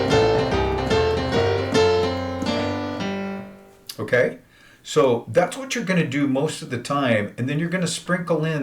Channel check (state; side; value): identical; both; correlation 1.00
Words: Okay? So that's what you're going to do most of the time. And then you're going to sprinkle